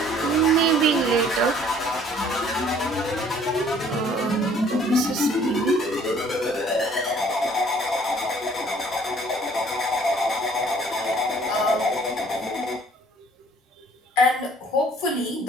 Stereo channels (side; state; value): both; normal; correlation 0.57